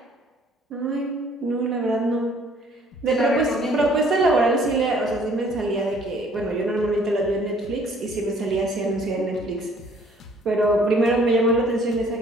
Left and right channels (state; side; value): normal; both; correlation 0.58